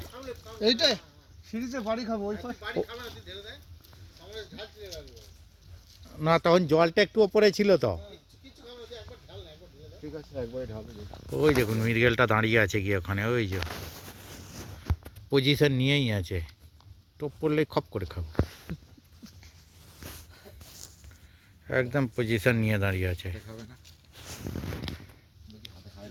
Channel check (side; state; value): both; identical; correlation 1.00